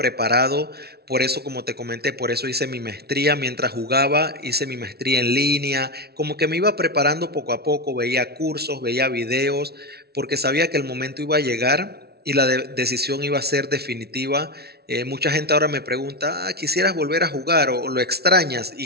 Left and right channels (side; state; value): left; late; 0.46 ms